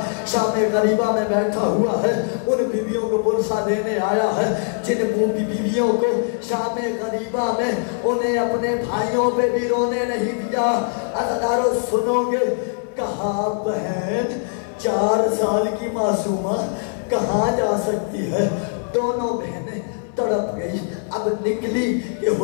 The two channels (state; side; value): silent; right; 64 dB below the other